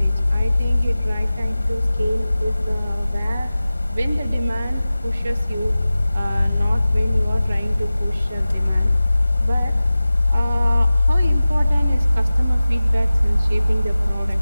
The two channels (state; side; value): inverted; both; correlation -0.97